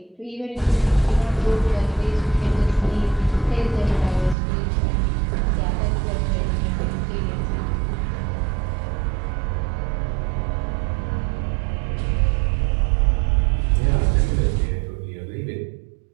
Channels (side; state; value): left; drops out; at 4.4 s